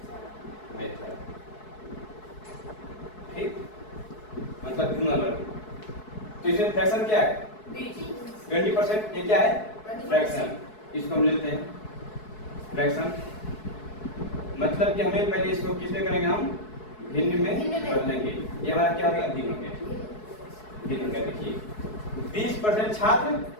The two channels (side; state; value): right; late; 4.7 ms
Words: method. ठीक, मतलब गुणा वर्ग। तो इसमें फ्रैक्शन क्या है? 20%। ये क्या है? फ्रैक्शन। इसको हम लेते हैं फ्रैक्शन, मतलब कि हमें पहले इसको किसमें करेंगे? हम भिन्न में बदलेंगे। ये हमारा क्या हो गया? भिन्न हो गया। भिन्न हो गया। देखिए 20% छात्र